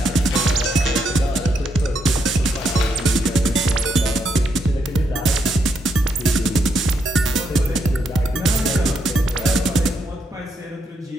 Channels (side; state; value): both; normal; correlation 0.78